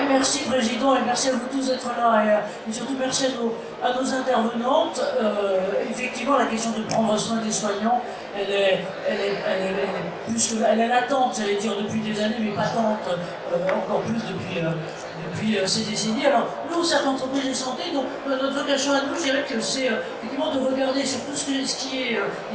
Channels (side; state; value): both; identical; correlation 1.00